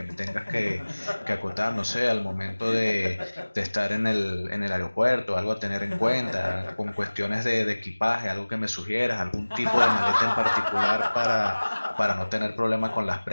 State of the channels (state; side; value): inverted; both; correlation -1.00